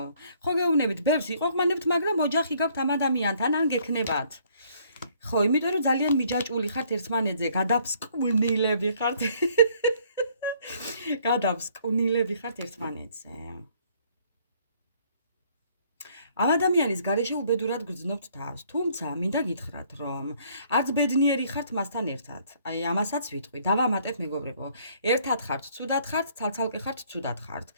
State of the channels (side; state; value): both; inverted; correlation -0.63